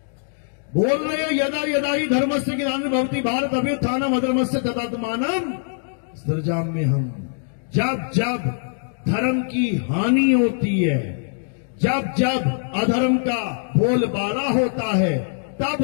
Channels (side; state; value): right; silent; digital silence